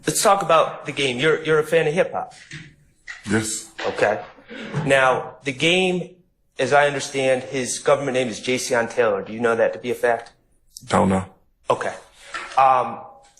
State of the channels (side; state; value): both; identical; correlation 1.00